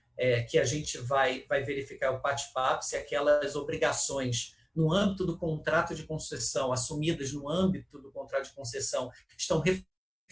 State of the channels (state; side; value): identical; both; correlation 1.00